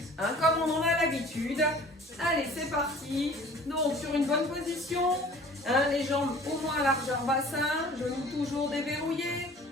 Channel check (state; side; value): normal; both; correlation 0.48